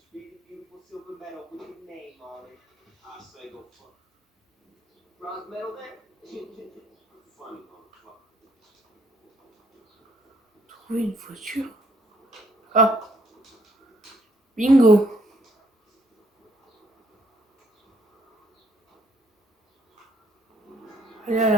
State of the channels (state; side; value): normal; both; correlation 0.68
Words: Trouver une voiture. Ah, bingo. Allez à